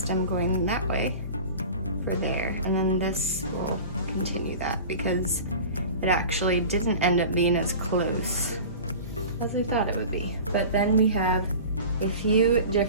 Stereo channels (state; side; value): inverted; both; correlation -0.37